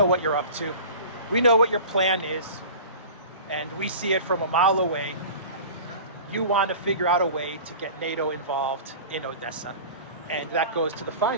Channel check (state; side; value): inverted; both; correlation -0.38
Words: what you're up to. We know what your plan is. And we see it from a mile away. You want to figure out a way to get NATO involved in Odessa. And that goes to the